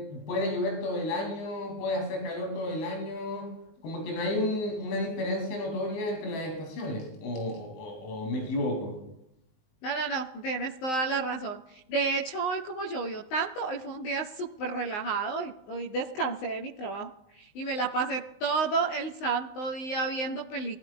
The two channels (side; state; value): right; late; 19 ms